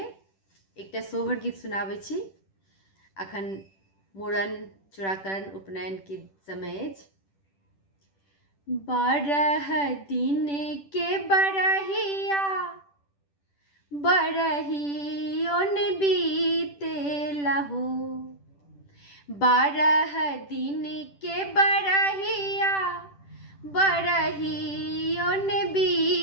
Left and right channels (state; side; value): late; right; 10 ms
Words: एकटा सोहर गीत सुनाबै छी। अखन मूड़न, चूड़ाकरण, उपनयन के समय अछि। 12 दिन के बरहिया बरहियोन बीतेला हो। 12 दिन के बरहिया बरहियोन